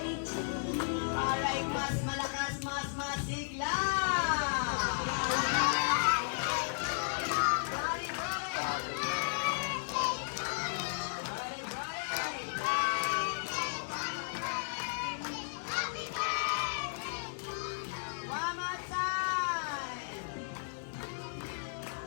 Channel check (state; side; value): silent; right; 55 dB below the other